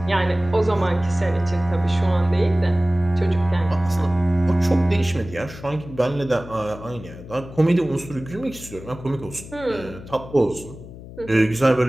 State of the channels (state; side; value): noise; left; hum, 15 dB below the sound